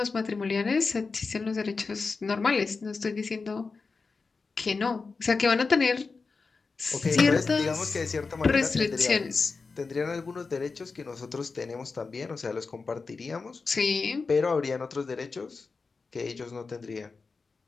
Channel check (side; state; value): right; quieter; 4.4 dB